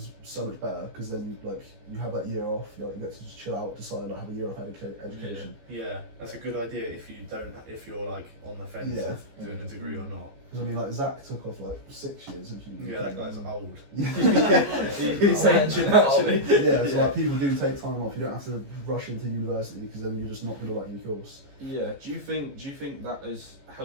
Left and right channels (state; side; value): late; left; 14 ms